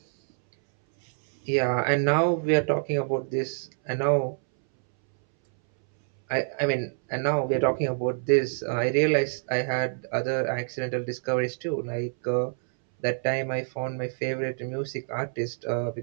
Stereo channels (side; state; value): left; silent; 60 dB below the other